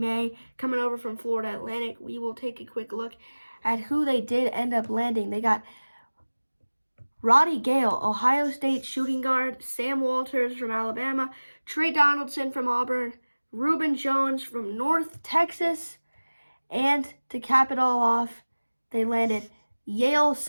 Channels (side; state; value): both; inverted; correlation -1.00